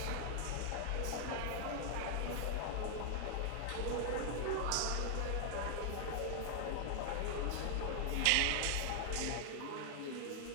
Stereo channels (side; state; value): both; different; correlation 0.00